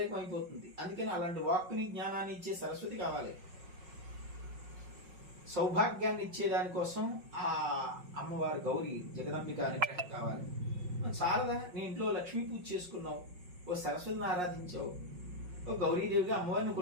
అయిపోతుంది. అందుకని అలాంటి వాక్కుని, జ్ఞానాన్ని ఇచ్చే సరస్వతి కావాలి. సౌభాగ్యాన్ని ఇచ్చే దానికోసం ఆ అమ్మవారు గౌరీ జగదంబిక అనుగ్రహం కావాలి. చాలదా? నీ ఇంట్లో లక్ష్మీ పూజ చేసుకున్నావు, ఓ సరస్వతిని ఆరాధించావు, ఓ గౌరీదేవిగా అమ్మవారిని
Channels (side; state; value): left; late; 5.5 ms